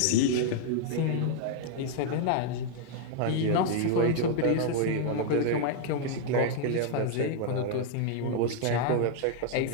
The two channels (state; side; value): different; both; correlation -0.01